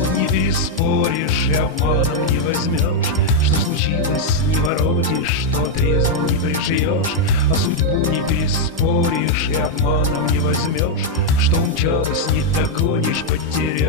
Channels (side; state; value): both; normal; correlation -0.01